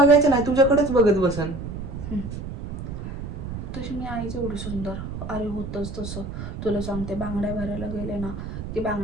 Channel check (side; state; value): right; noise; rumble, 7 dB below the sound